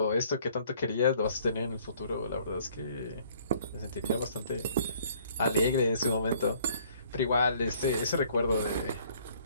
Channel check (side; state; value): both; inverted; correlation -0.59